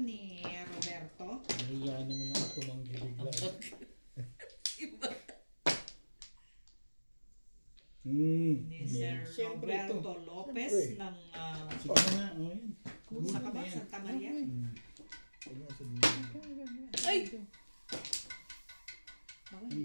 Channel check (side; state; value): both; inverted; correlation -1.00